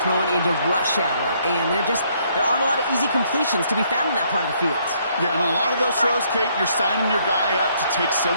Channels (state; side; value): inverted; both; correlation -0.68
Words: throwing into rush hour, and there aren't a lot of easy completions to be found in that part of the field. Yeah, and a lot of those throws, Kate, you're signing your guy up to take